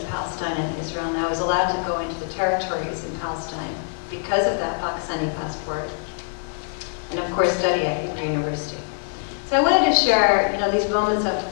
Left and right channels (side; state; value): right; silent; digital silence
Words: Palestine and Israel. And I was allowed to go into the territories in Palestine because of that Pakistani passport, and of course study at Hebrew University. So I wanted to share, these moments of